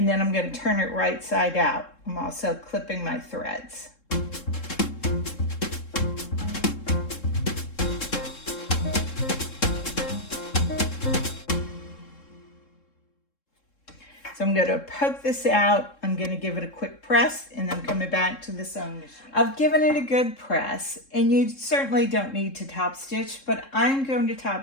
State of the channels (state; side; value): late; right; 3.7 ms